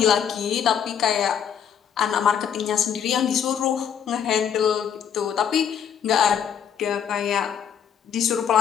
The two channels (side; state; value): right; quieter; 8.3 dB